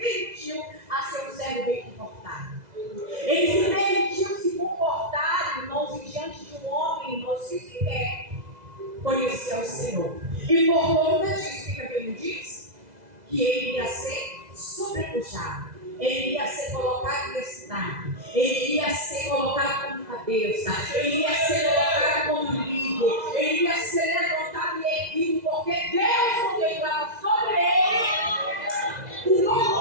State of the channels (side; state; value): left; late; 2.0 ms